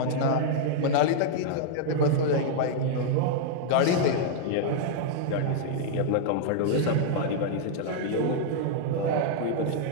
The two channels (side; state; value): both; different; correlation -0.01